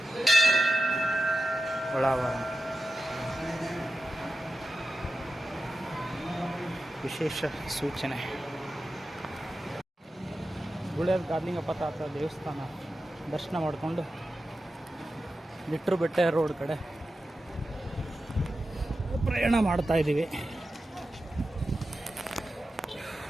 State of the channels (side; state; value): both; normal; correlation 0.92